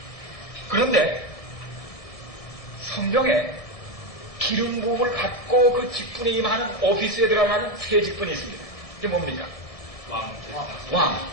그런데 성경에 기름 부음을 받고 그 직분에 임하는 오피스에 들어가는 세 직분이 있습니다. 이게 뭡니까? 왕.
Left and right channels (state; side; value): late; right; 1.7 ms